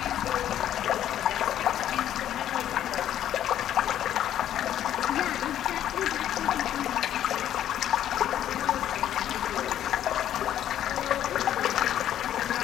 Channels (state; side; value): quieter; right; 11.2 dB